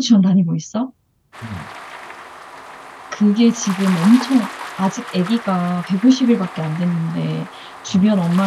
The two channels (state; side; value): identical; both; correlation 1.00